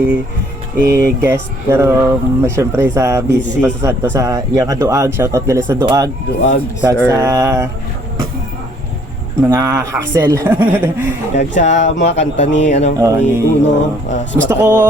i-guest pero syempre sa busy pa sa Santo sa iyang Duag. Shout out gali sa Duag. Kag sa mga hassle. Kag sa mga kanta ni ni Uno. Gusto ko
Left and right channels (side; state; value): both; normal; correlation 0.61